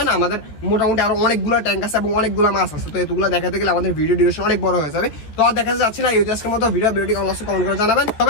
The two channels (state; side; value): late; right; 14 ms